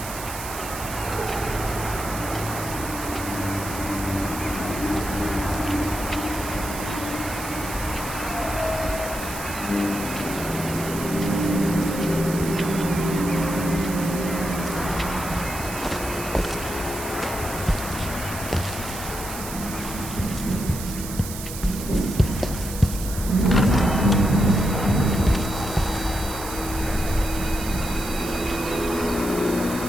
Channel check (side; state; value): right; noise; hiss, 9 dB below the sound